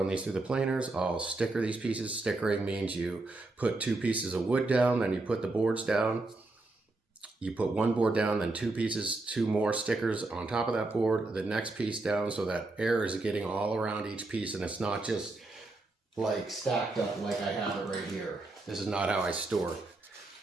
these through the planers, I'll sticker these pieces. Stickering means you put 2 pieces of wood down, then you put the boards down. You put 1 board down, then 2 pieces, 2 more stickers on top of that board, the next piece down, so that air is getting all around each piece and it's not just like stacked up like I have it right here. This is not how I store.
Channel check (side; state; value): left; quieter; 3.1 dB